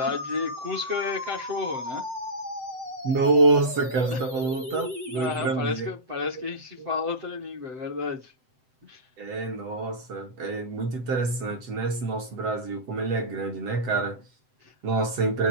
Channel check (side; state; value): left; late; 7.8 ms